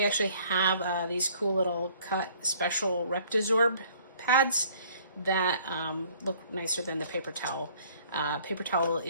actually have these cool little cut special Reptizorb pads that look nicer than the paper towel. Paper towel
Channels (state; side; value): inverted; both; correlation -0.57